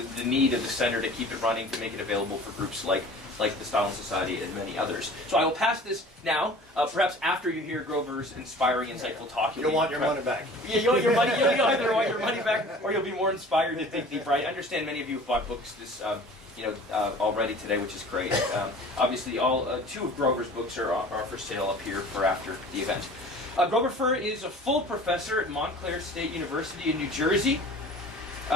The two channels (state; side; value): normal; both; correlation 0.44